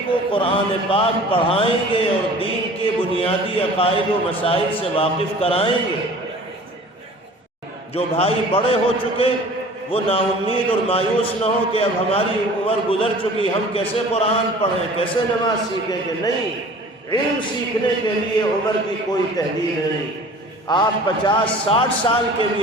کو قرآن پاک پڑھائیں گے اور دین کے بنیادی عقائد و مسائل سے واقف کرائیں گے۔ جو بھائی بڑے ہو چکے وہ نا امید اور مایوس نہ ہو کہ اب ہماری عمر گزر چکی، ہم کیسے قرآن پڑھیں، کیسے نماز سیکھیں گے۔ نہیں، علم سیکھنے کے لیے عمر کی کوئی تحدید نہیں۔ آپ 50-60 سال کے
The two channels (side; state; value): both; normal; correlation 0.45